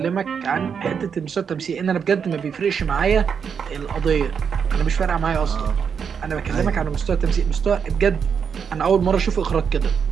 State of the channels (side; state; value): left; quieter; 6.8 dB